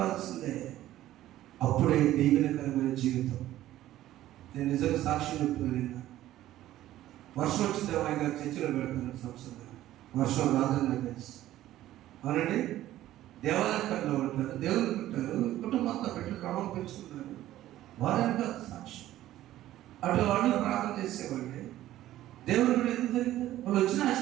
అప్పుడే దీవెనకరమైన జీవితం. నేను నిజంగా సాక్షి చెప్తున్నాను. వర్షం వచ్చింది ఆయన గారు చర్చిలో పెడతాను సంవత్సరం. వర్షం రాదని నాకు తెలుసు. అవునండి, దేవాలయంలో ఉంటారు, దేవుడు ఉంటారు, కుటుంబంతో పెట్టి క్రమం పెంచుకుంటారు. వారని కాదు సాక్షి. అటు వాళ్ళు ప్రార్థన చేసేవాళ్ళే. దేవుడు కూడా ఎందుకు జరిగింది? వాళ్ళు వచ్చిన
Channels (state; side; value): quieter; left; 14.0 dB